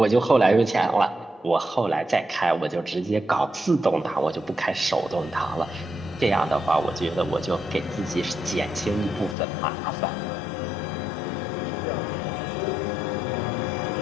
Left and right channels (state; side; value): drops out; right; at 9.3 s